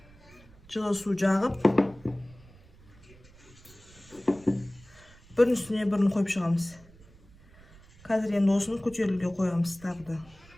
жылы су жағып, бірін үстіне бірін қойып шығамыз. Қазір енді осыны көтерілуге қоямыз тағы да.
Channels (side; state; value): right; noise; rumble, 24 dB below the sound